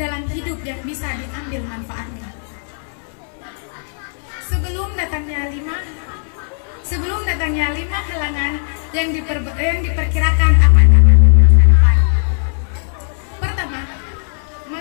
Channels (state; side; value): silent; right; digital silence